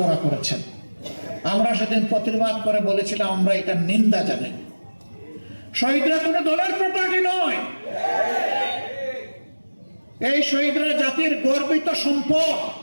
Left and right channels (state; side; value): inverted; both; correlation -1.00